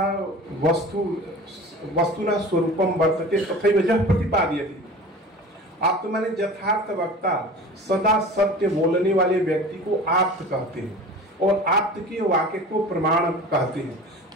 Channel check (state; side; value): normal; both; correlation 0.38